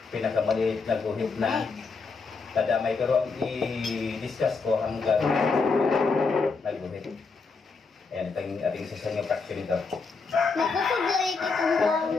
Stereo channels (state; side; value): quieter; right; 4.5 dB